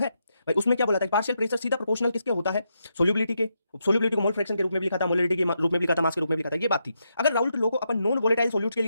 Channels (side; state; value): both; inverted; correlation -0.82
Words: भाई। उसमें क्या बोला था, पार्शियल प्रेशर सीधा प्रोपोर्शनल किसके होता है, सोल्यूबिलिटी के। सोल्यूबिलिटी को मोल फ्रैक्शन के रूप में भी लिखा था, मोलिडिटी के रूप में भी लिखा था, मास के रूप में भी लिखा था। ये बात थी। अगर राउल्ट लॉ को अपन नॉन वोलेटाइल सोल्यूट के